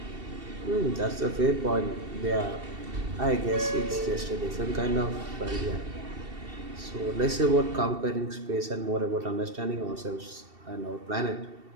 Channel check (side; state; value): left; late; 2.7 ms